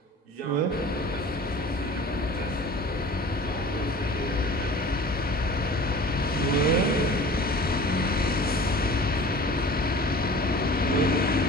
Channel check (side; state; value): both; normal; correlation 0.42